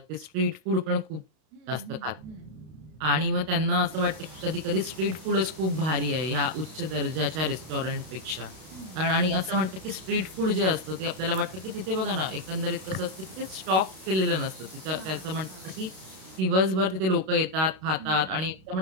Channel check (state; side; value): late; left; 32 ms